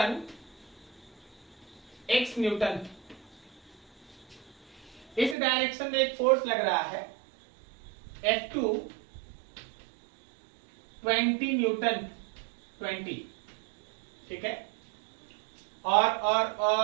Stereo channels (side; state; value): left; drops out; at 5.4 s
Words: x न्यूटन। इस डायरेक्शन में एक फोर्स लग रहा है F2 20 न्यूटन, 20, ठीक है, और